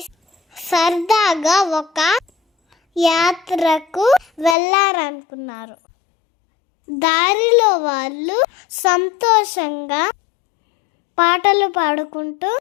సరదాగా ఒక యాత్రకు వెళ్ళారనుకున్నారు. దారిలో వాళ్ళు సంతోషంగా పాటలు పాడుకుంటూ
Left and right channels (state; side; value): drops out; right; at 4.5 s